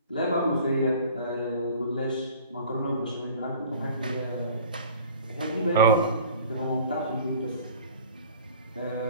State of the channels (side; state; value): both; inverted; correlation -0.46